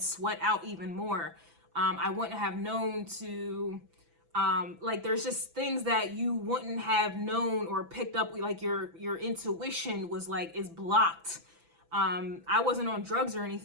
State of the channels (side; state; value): left; late; 6.0 ms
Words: out even more. I wouldn't have known to, like, there's just things that you wouldn't have known or picked up, like your intuition was like, is blocked. I wasn't on drugs or